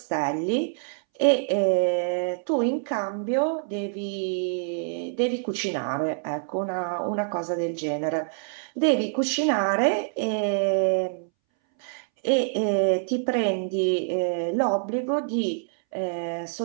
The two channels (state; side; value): silent; left; 61 dB below the other